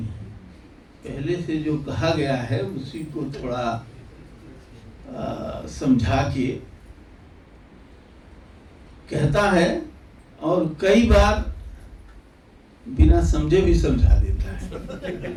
पहले से जो कहा गया है उसी को थोड़ा समझा के कहता है, और कई बार बिना समझे भी समझा देता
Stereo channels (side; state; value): both; identical; correlation 1.00